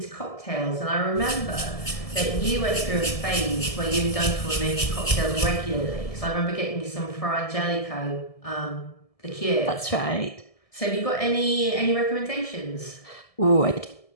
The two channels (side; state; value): right; late; 1.7 ms